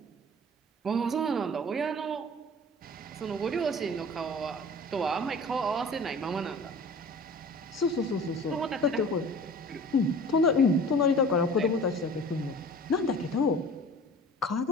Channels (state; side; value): normal; both; correlation 0.43